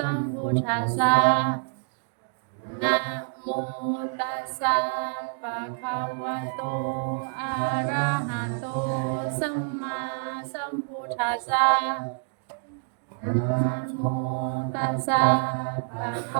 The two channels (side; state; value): left; silent; digital silence